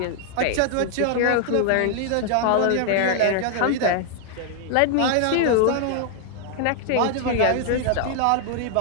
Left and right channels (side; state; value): both; different; correlation 0.00